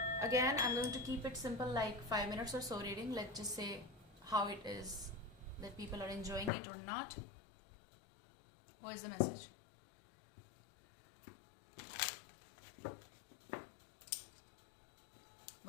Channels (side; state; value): right; drops out; at 6.5 s